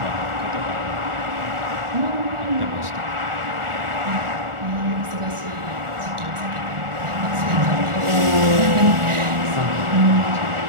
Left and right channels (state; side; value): late; left; 1.4 ms